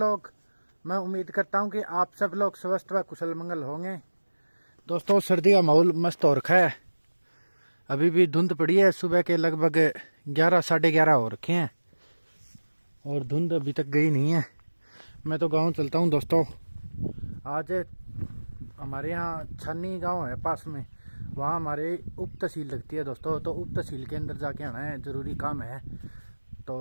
मैं उम्मीद करता हूं कि आप सब लोग स्वस्थ व कुशल मंगल होंगे। दोस्तों सर्दी का माहौल मस्त हो रखा है, अभी भी धुंध पड़ी है। सुबह के लगभग 11 साढ़े 11 हो रखे हैं और धुंध अभी तक गई नहीं है। मैं तो गांव चलता हूं दोस्तों। आज हमारे यहाँ छन्नी गांव है पास में, वहाँ हमारे उप तहसील लगती है दोस्तों। तो उप तहसील के अंदर जाके आना है, ज़रूरी काम है।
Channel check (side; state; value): both; inverted; correlation -1.00